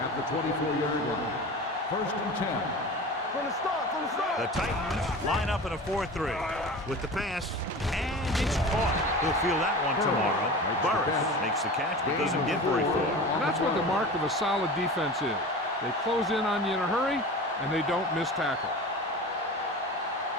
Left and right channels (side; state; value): both; normal; correlation 0.34